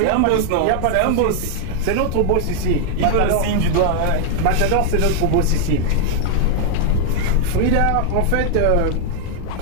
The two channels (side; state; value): both; different; correlation 0.00